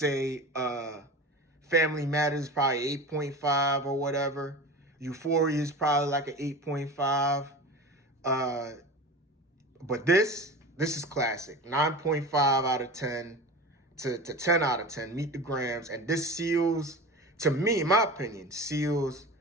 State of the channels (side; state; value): both; normal; correlation 0.32